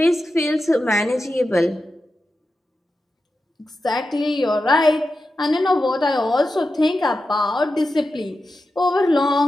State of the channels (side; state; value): both; normal; correlation 0.91